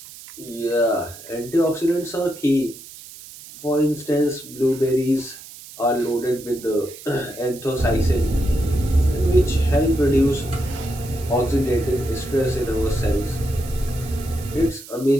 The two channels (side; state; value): right; noise; hiss, 17 dB below the sound